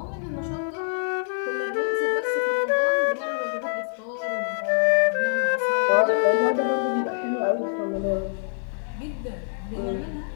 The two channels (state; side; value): silent; right; 62 dB below the other